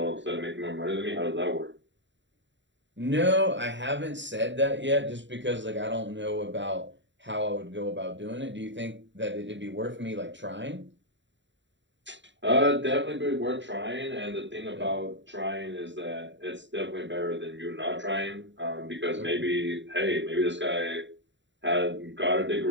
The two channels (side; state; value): left; late; 0.53 ms